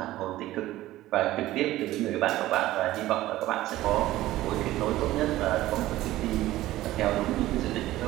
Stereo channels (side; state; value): left; quieter; 15.8 dB